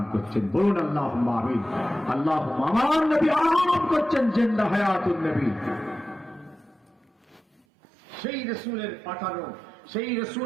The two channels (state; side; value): drops out; left; at 7.6 s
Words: করছেন। বলুন আল্লাহুম্মা আমিন। আল্লাহুম্মা আমার নবী আরাম করছেন, জিন্দা হায়াতুন নবী। সেই রাসূলের পাঠানো, সেই